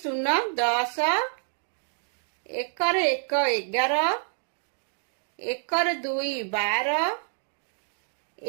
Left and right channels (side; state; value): left; silent; digital silence